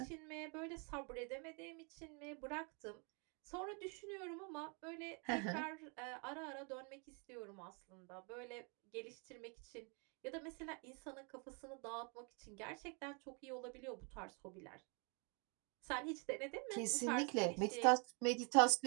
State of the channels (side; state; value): left; quieter; 35.3 dB